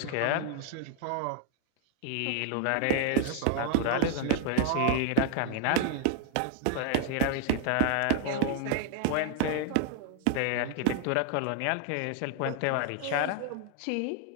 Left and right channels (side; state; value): both; different; correlation 0.00